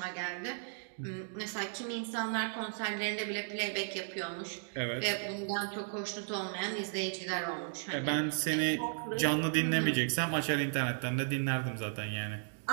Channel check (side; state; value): left; silent; digital silence